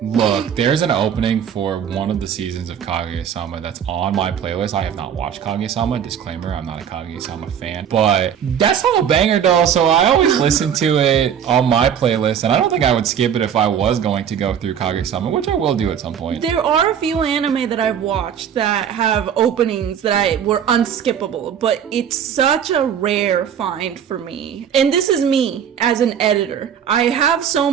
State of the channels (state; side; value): quieter; left; 8.5 dB